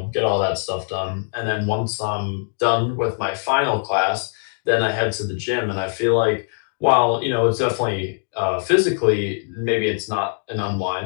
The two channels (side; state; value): right; silent; digital silence